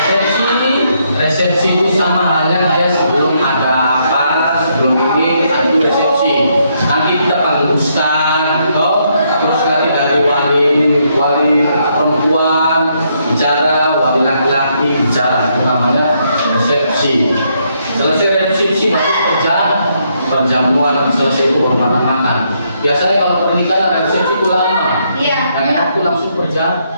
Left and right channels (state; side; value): inverted; both; correlation -0.75